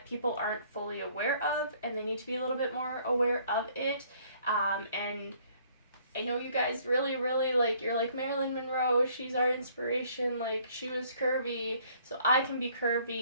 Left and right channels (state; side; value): inverted; both; correlation -0.61